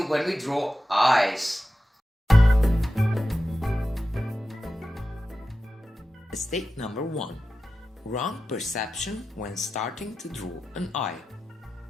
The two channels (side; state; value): both; normal; correlation 0.93